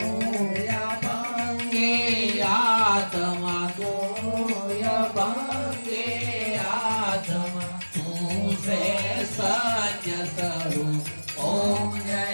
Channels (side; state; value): both; inverted; correlation -1.00